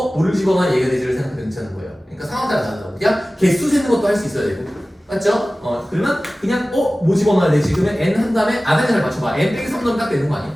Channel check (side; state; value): both; normal; correlation 0.97